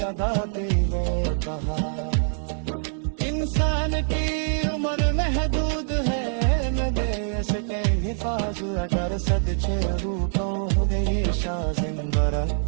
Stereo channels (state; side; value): silent; left; digital silence